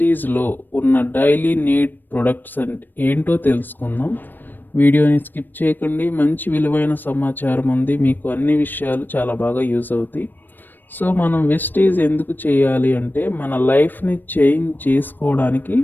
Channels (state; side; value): late; right; 0.092 ms